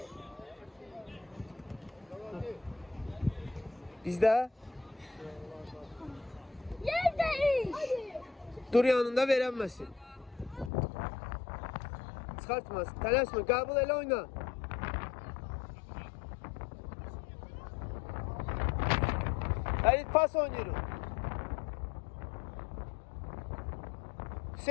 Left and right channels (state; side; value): drops out; right; at 10.7 s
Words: Bizdə Yerdeyiz. dur yanında verənməsin. Çıxartmasın. Tələsmə, qəbul elə oyna. Həlit pas oynayırıq.